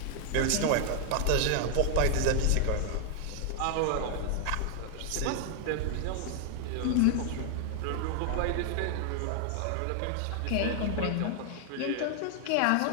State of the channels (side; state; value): both; different; correlation 0.00